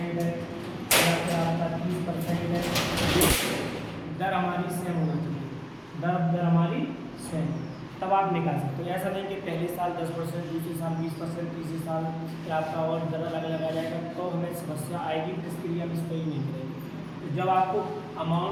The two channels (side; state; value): both; identical; correlation 1.00